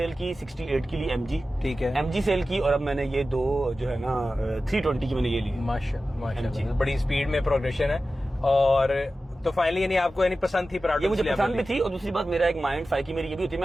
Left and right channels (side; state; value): both; normal; correlation 0.94